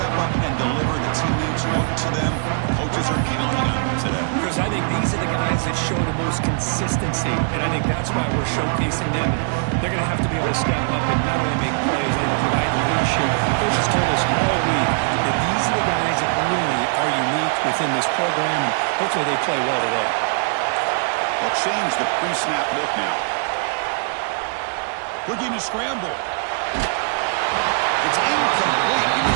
up and deliver. The teammates look to them. Coaches are counting on them today. Because I think these are the guys that show the most consistency, and I think that's why we're showcasing them. They're going to have to be able to step up and not only make plays, I think provide leadership. Coaches told us all week that these are the guys that really are unique within this program, and hopefully they play well today. They'll change the pre-snap look now. Looking to scramble. It's incomplete. He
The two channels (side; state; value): left; silent; 65 dB below the other